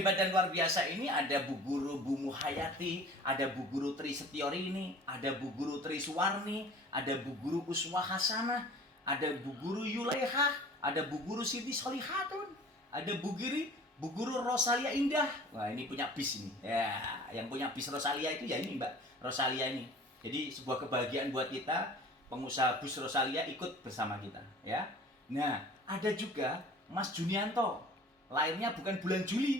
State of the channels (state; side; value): normal; both; correlation 0.45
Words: dan luar biasa ini, ada Bu Guru Bu Muhayati, ada Bu Guru Tri Setiorini, ada Bu Guru Tri Suwarni, ada Bu Guru Uswah Hasanah, ada Bu Guru Yulaiha, ada Bu Guru Siti Solihatun, ada Bu Guru Rosalia Indah. Wah, ini punya bis ini. Ya, yang punya bis Rosalia itu ya ini Mbak Rosalia ini. Jadi sebuah kebahagiaan buat kita, pengusaha bus Rosalia ikut bersama kita, ya. Nah, ada juga Mas Junianto. Lahirnya bukan bulan